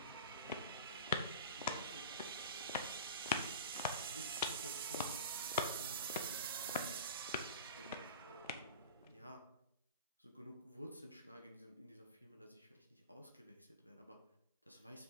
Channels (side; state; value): both; inverted; correlation -0.33